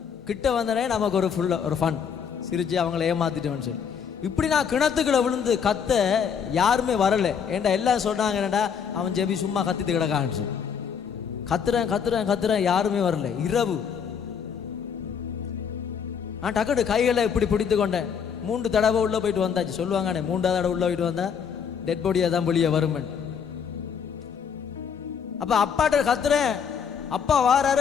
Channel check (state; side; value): quieter; right; 7.1 dB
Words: கிட்ட வந்தனே நமக்கு ஒரு ஒரு ஃபன், சிரிச்சு அவங்கள ஏமாத்திட்டேன்னு சொல்லி. இப்படி நான் கிணத்துக்குள்ள விழுந்து கத்த யாருமே வரலை. ஏன்டா எல்லாம் சொல்றாங்க, என்னடா அவன் ஜெபி சும்மா கத்திட்டு கிடக்கான்னு சொல்லி. கத்துறேன் யாருமே வரல. இரவு நான் டக்குனு கைகளை இப்படி பிடித்து கொண்டேன். 3 தடவை உள்ள போயிட்டு வந்தாச்சு. சொல்லுவாங்கண்ணே 3ஆவது தடவை உள்ள போயிட்டு வந்தா டெட் பாடியா தான் வெளியே வருமன். அப்ப அப்பாட்ட கத்துறேன், அப்பா